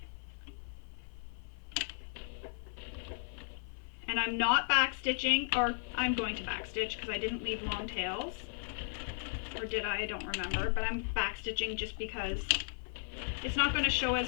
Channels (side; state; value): right; silent; 54 dB below the other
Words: And I'm not back stitching, or I'm going to back stitch because I didn't leave long tails. Or did I? I don't remember, but I'm back stitching just because it's not going to show